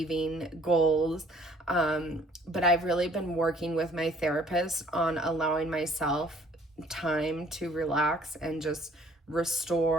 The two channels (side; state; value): both; normal; correlation 0.58